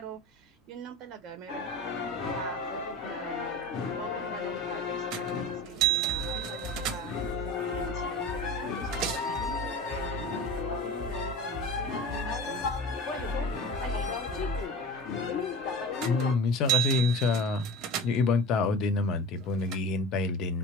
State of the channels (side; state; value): both; normal; correlation 0.34